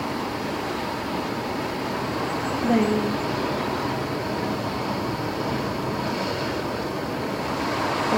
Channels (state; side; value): identical; both; correlation 1.00